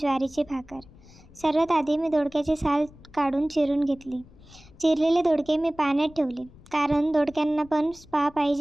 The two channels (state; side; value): noise; left; rumble, 23 dB below the sound